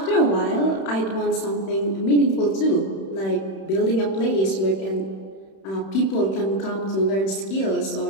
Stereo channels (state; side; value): late; right; 31 ms